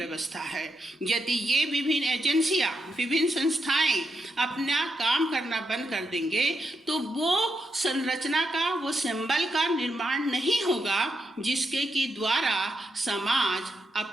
है। यदि ये विभिन्न एजेंसियां, विभिन्न संस्थाएं अपना काम करना बंद कर देंगे तो वो संरचना का, वो सिंबल का निर्माण नहीं होगा जिसके कि द्वारा समाज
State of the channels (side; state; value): both; normal; correlation 0.83